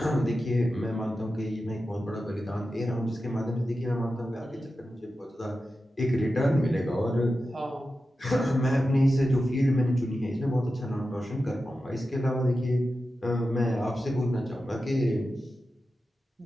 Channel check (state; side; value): normal; both; correlation 0.92